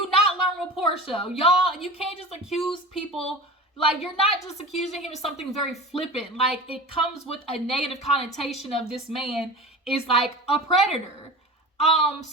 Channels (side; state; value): both; normal; correlation 0.33